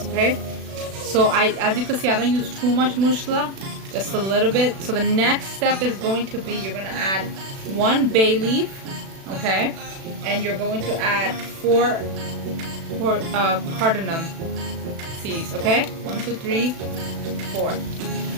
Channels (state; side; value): late; left; 36 ms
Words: okay? So as you can see, I don't use too much mushla, just a little bit. So the next step is going to be, you're going to add 1 bay leaf, okay? And you're going to add 4 cardamom seeds, okay? 1, 2, 3, 4.